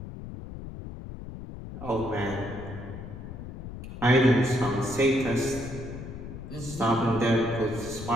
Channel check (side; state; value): left; noise; rumble, 10 dB below the sound